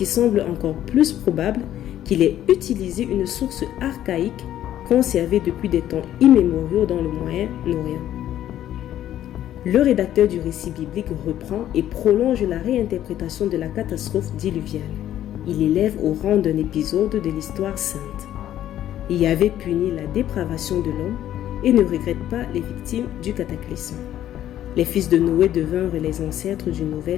semble encore plus probable, qu'il ait utilisé une source archaïque conservée depuis des temps immémoriaux dans le Moyen-Orient. Le rédacteur du récit biblique reprend et prolonge la réinterprétation de la catastrophe diluviale. Il élève au rang d'un épisode de l'histoire sainte. Yahvé punit la dépravation de l'homme et ne regrette pas les victimes du cataclysme. Les fils de Noé devinrent les ancêtres d'une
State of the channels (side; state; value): right; quieter; 12.0 dB